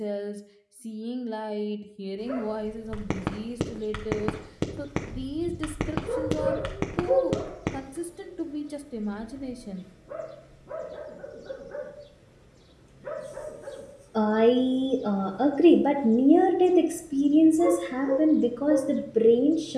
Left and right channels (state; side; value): identical; both; correlation 1.00